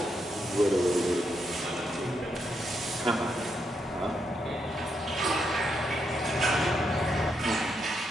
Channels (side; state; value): both; normal; correlation 0.80